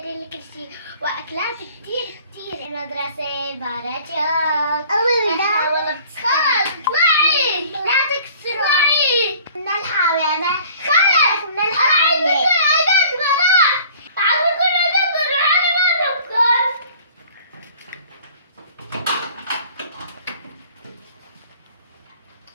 لي كل شيء واكلات كتير. المدرسة باراتشوك. والله خلص اطلعي. لا تكسري. من الحمامة. خلص من الحمامة.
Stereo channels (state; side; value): inverted; both; correlation -0.51